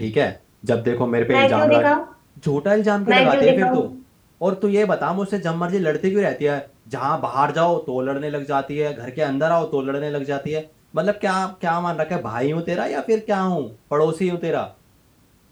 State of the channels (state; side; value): identical; both; correlation 1.00